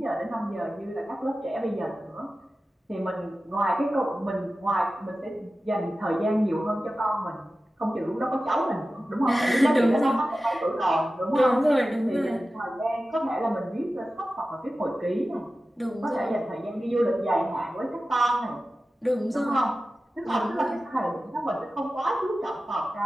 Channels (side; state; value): both; normal; correlation 0.94